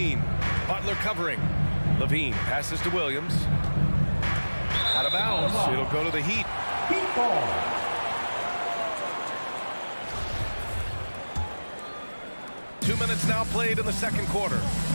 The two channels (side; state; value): both; inverted; correlation -1.00